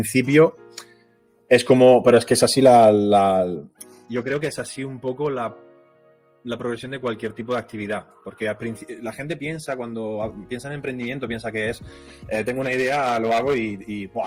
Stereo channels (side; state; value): both; identical; correlation 1.00